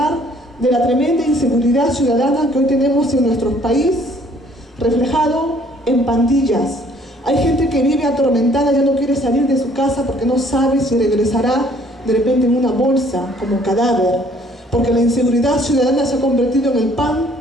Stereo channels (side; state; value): both; normal; correlation 0.60